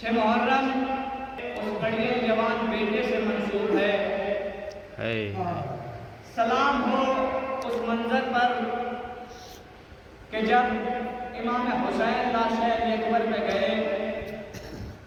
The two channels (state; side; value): identical; both; correlation 1.00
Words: 6 محرم اس بڑے جوان بیٹے سے منسوب ہے. سلام ہو اس منظر پر کہ جب امام حسین لاش علی اکبر میں گئے,